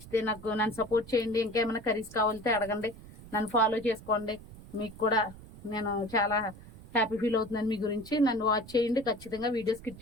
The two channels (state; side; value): noise; right; rumble, 18 dB below the sound